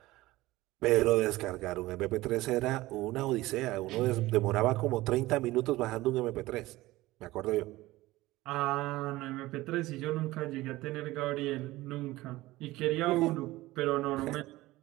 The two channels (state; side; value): quieter; left; 18.3 dB